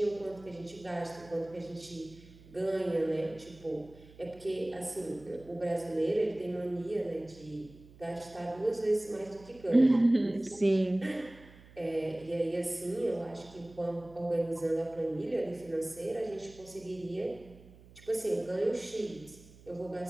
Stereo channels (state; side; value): noise; right; hum, 22 dB below the sound